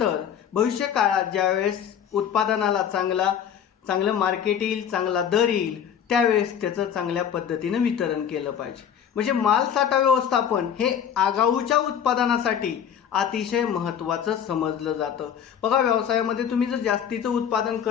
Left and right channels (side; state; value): right; quieter; 8.6 dB